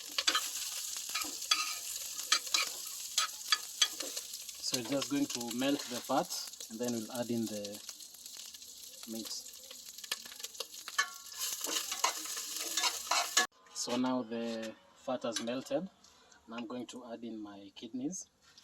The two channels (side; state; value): both; identical; correlation 1.00